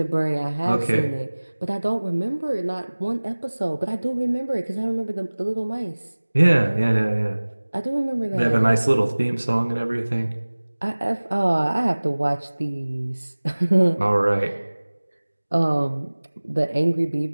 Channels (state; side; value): inverted; both; correlation -1.00